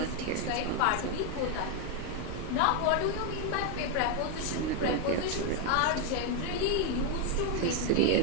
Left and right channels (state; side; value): different; both; correlation 0.01